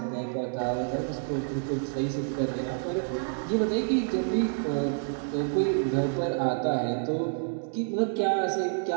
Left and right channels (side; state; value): left; silent; digital silence